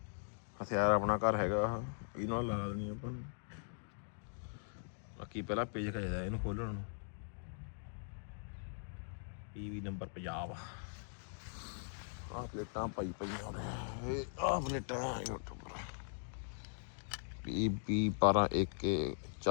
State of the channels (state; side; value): silent; right; digital silence